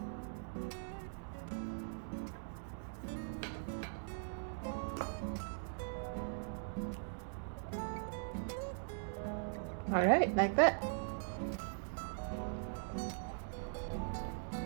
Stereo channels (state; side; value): silent; left; digital silence